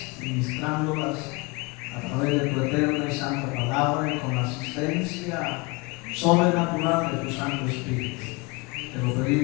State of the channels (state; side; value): quieter; right; 26.9 dB